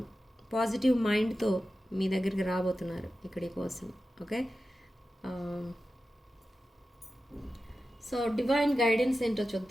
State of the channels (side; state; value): both; normal; correlation 0.93